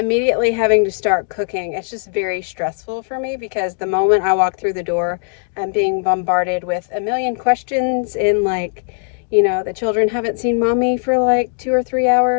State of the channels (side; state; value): right; silent; 58 dB below the other